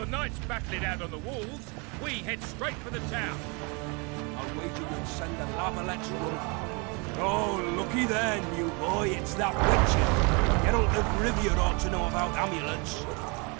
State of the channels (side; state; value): left; quieter; 31.1 dB